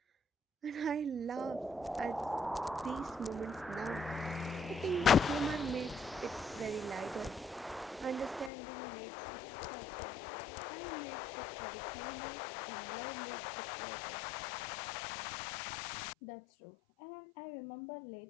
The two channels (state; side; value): drops out; right; at 8.5 s